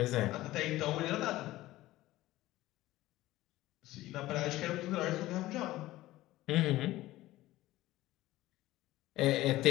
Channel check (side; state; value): right; quieter; 16.7 dB